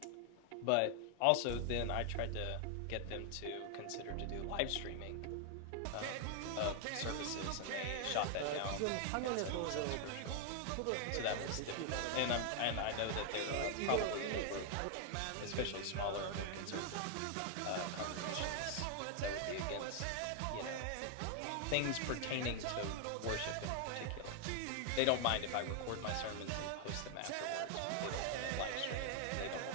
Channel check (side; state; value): both; different; correlation 0.00